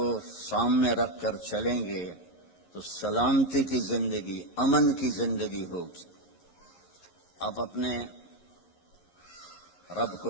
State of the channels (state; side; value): late; right; 11 ms